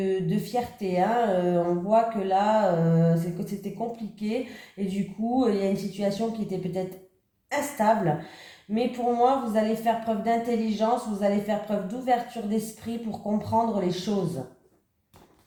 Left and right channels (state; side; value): identical; both; correlation 1.00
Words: fierté. Hein. On voit que là, c'était compliqué et du coup, il y a une situation qui était peut-être instable. Mais pour moi, vous allez faire preuve d'intelligence, vous allez faire preuve d'ouverture d'esprit pour comprendre les choses.